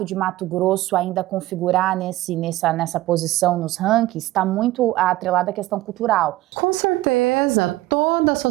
de Mato Grosso ainda configurar nessa posição nos rankings está muito atrelada à questão cultural. Com certeza, toda a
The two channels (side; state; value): left; quieter; 17.0 dB